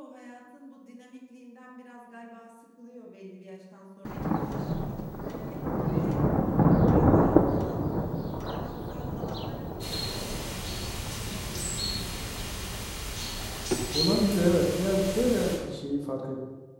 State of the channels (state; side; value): identical; both; correlation 1.00